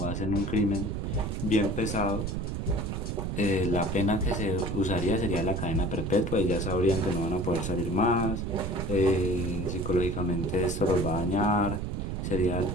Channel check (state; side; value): noise; right; rumble, 3 dB below the sound